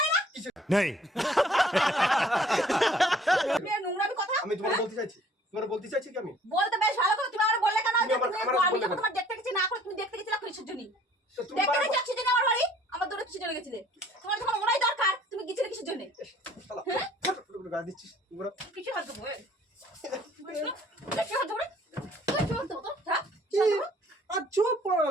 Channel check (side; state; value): both; normal; correlation 0.56